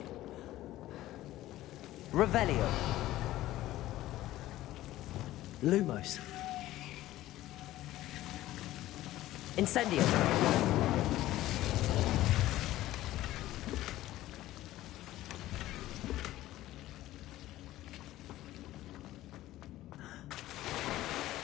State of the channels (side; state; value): right; quieter; 15.4 dB